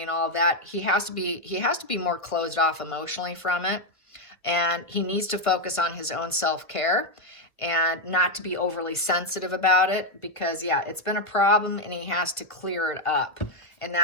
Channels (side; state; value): right; late; 1.3 ms